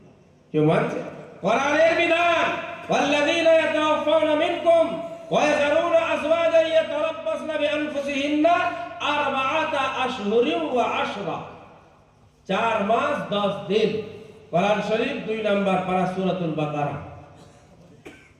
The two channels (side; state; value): both; identical; correlation 1.00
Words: কেউ মানছে? কোরআনের বিধান, ওয়াল্লাযীনা ইয়াতাওয়াফাউনা মিনকুম ওয়া ইয়াযারুনা আযওয়াজান ইয়াতারাব্বাসনা বিআনফুসিহিন্না আরবাআতা আশহুরিন ওয়া আশরা। 4 মাস 10 দিন। কোরআন শরীফ 2 নম্বর পারা সূরাতুল বাকারা।